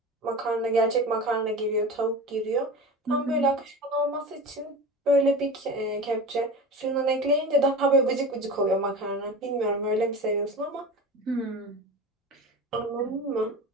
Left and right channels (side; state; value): both; normal; correlation 0.31